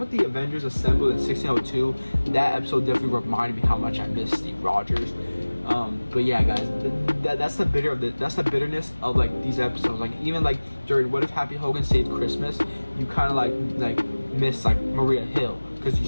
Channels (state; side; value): inverted; both; correlation -1.00